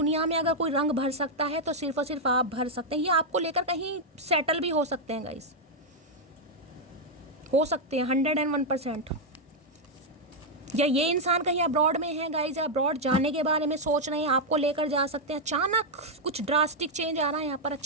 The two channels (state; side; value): normal; both; correlation -0.02